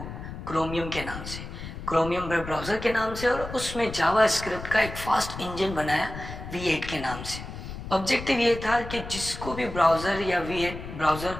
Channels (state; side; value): noise; left; rumble, 10 dB below the sound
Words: क्रोमियम के नाम से, क्रोमियम वेब ब्राउज़र के नाम से, और उसमें जावास्क्रिप्ट का एक फास्ट इंजन बनाया V8 के नाम से। ऑब्जेक्टिव ये था कि जिसको भी ब्राउज़र या V8 ब्राउज़र